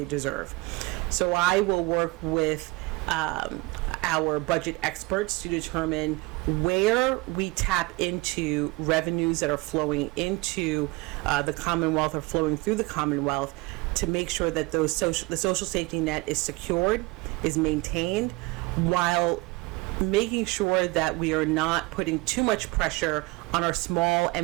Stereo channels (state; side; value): quieter; left; 23.1 dB